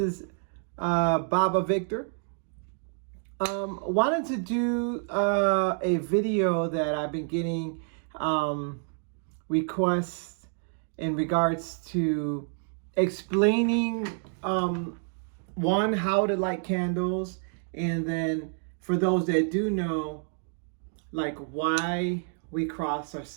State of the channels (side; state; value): left; silent; 59 dB below the other